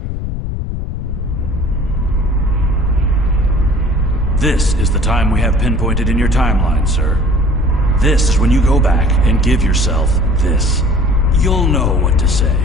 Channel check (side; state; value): left; noise; rumble, 5 dB below the sound